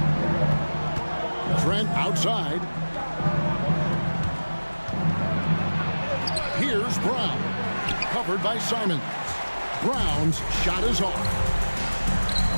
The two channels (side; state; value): both; inverted; correlation -1.00